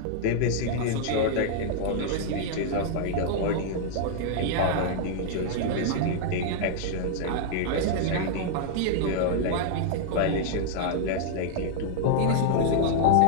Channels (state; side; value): different; both; correlation -0.01